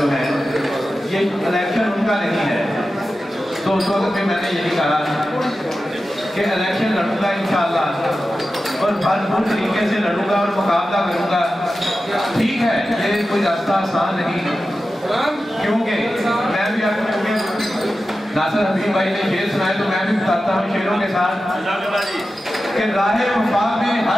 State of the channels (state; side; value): normal; both; correlation 0.93